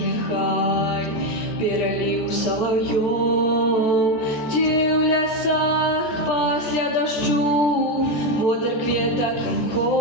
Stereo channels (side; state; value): right; late; 13 ms